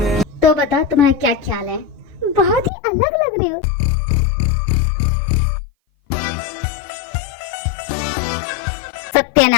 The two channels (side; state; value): right; drops out; at 2.7 s